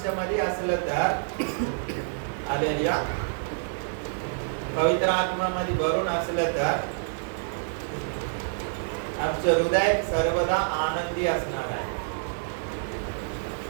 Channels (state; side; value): silent; left; digital silence